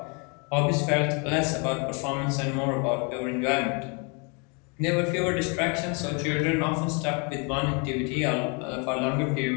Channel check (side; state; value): right; quieter; 34.4 dB